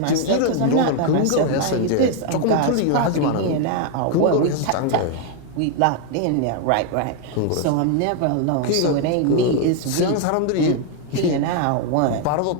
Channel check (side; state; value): both; different; correlation 0.00